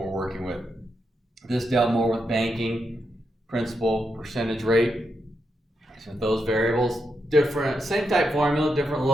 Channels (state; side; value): normal; both; correlation 0.84